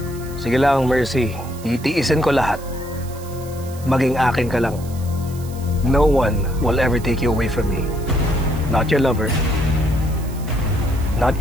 Sige lang, Mercy. Titiisin ko lahat. Maging akin ka lang. No one will ever take you away from me. Not your lover. Not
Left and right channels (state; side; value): noise; right; hiss, 19 dB below the sound